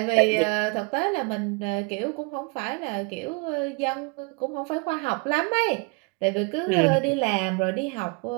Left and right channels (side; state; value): left; quieter; 29.5 dB